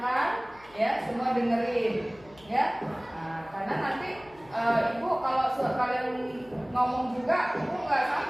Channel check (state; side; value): noise; left; hum, 25 dB below the sound